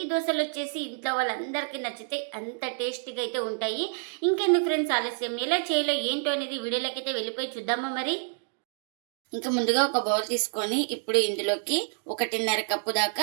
దోశలు వచ్చేసి ఇంట్లో వాళ్ళందరికీ నచ్చితే అంత టేస్టీగా అయితే ఉంటాయి. ఇంకెందుకు ఫ్రెండ్స్ ఆలస్యం, ఎలా చేయాలో ఏంటో అనేది వీడియోలోకి అయితే వెళ్ళిపోయి చూద్దామా మరి. ఇంకా ముందుగా ఒక బౌల్ తీసుకొని ఇప్పుడు ఇందులోకి 1.5 కప్పు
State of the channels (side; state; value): left; silent; 59 dB below the other